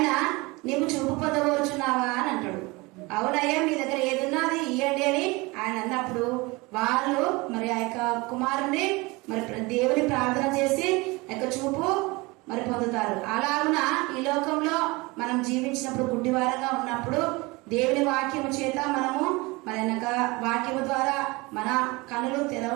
నీవు చూపు పొందవచ్చున్నావా అని అంటాడు. అవునయ్యా మీ దగ్గర ఏదున్నా అది ఇవ్వండి అని ఆయన అన్నప్పుడు వాళ్ళు మరి ఆ యొక్క కుమారుని మరి దేవుని ప్రార్థన చేసి ఆ యొక్క చూపు మరి పొందుతారు. అలాగున ఈ లోకంలో మనం జీవించినప్పుడు గుడ్డివారంగా ఉన్నప్పుడు దేవుని వాక్యము చేత మనము మరి వాక్యము ద్వారా మన కనులు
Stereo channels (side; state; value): left; quieter; 24.1 dB